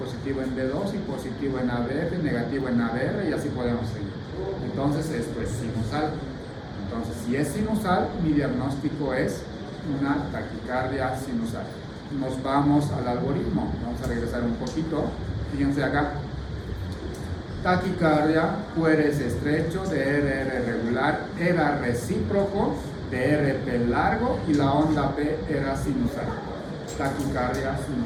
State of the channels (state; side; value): identical; both; correlation 1.00